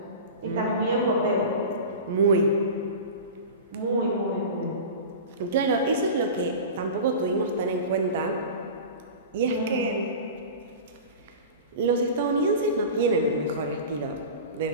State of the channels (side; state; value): both; inverted; correlation -0.32